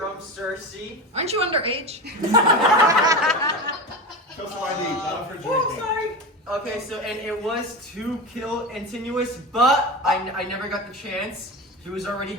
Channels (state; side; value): normal; both; correlation 0.25